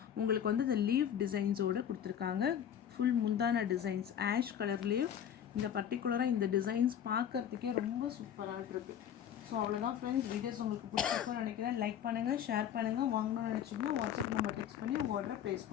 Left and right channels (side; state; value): right; quieter; 9.3 dB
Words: உங்களுக்கு வந்து இந்த லீஃப் டிசைன்ஸோடு கொடுத்துருக்காங்க. ஃபுல் முந்தான டிசைன்ஸ் ஆஷ் கலர்லேயும் இந்த பர்டிகுலராக இந்த டிசைன்ஸ் பார்க்குறதுக்கே ரொம்ப சூப்பராக இருக்குது. ஸோ அவ்வளோதான் ஃப்ரெண்ட்ஸ். வீடியோஸ் உங்களுக்கு பிடிச்சிருக்குன்னு நினைக்கிறேன். லைக் பண்ணுங்கள், ஷேர் பண்ணுங்கள். வாங்கணும்னு நினச்சிங்கன்னா வாட்ஸ்அப் நம்பர் டெக்ஸ்ட் பண்ணி உங்கள் ஆர்டரை ப்ளேஸ்